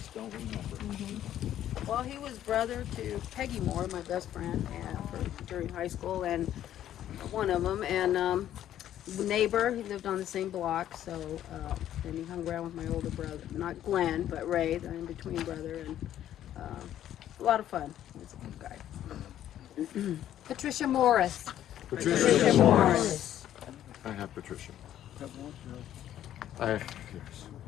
don't remember. Well, he was brother to Peggy Moore, my best friend, during high school, and one of them, and neighbor. He lived on the same block, so and he hung around with my older brother, not Glenn, but Ray, the in-between brother, and a lot of fun. He was a good guy. Patricia Morris. Patricia Morris. I have Patricia. Yes.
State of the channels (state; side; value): quieter; right; 11.6 dB